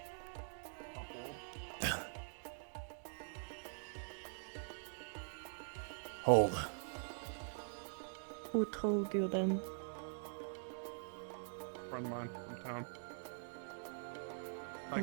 Hold. Who told you then? Friend of mine from town. I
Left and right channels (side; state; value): left; silent; digital silence